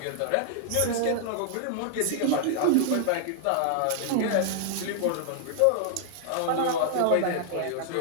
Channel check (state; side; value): different; both; correlation -0.01